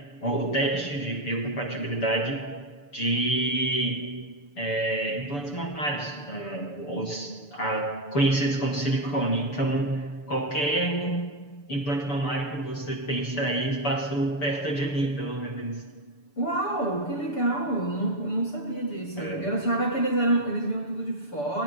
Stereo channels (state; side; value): late; right; 6.9 ms